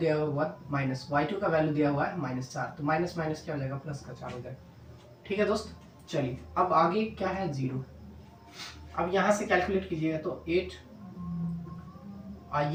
हुआ है 1 माइनस y2 का वैल्यू दिया हुआ है -4। तो माइनस माइनस क्या हो जाएगा, प्लस का 4 हो जाएगा, ठीक है दोस्त। चलिए, अब आगे क्या है, 0। अब यहाँ से कैलकुलेट कीजिएगा तो 8,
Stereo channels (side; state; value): both; identical; correlation 1.00